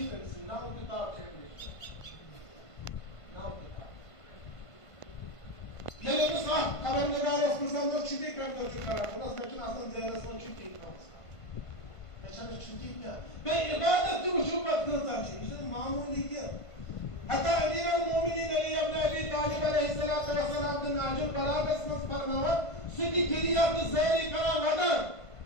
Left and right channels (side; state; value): right; late; 1.5 ms